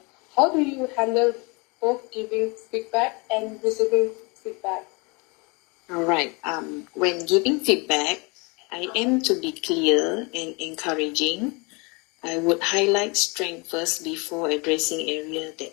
How do you handle both giving feedback and receiving feedback? Alright, when giving feedback, I aim to be clear and encouraging. I would highlight strength first before addressing areas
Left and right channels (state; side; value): quieter; right; 29.1 dB